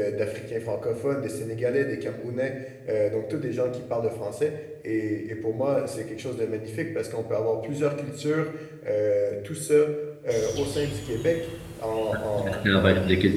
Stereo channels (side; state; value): both; identical; correlation 1.00